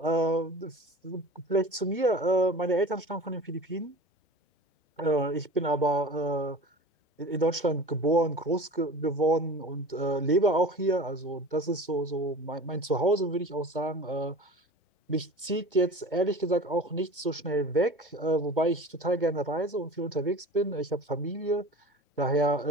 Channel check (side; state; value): both; normal; correlation 0.38